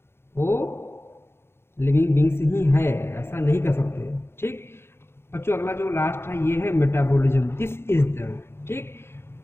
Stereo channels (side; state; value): right; late; 0.12 ms